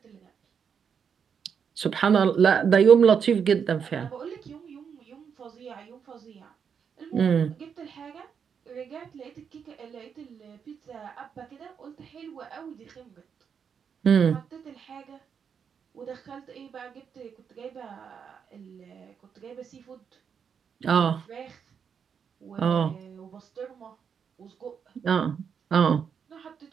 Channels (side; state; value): left; quieter; 7.0 dB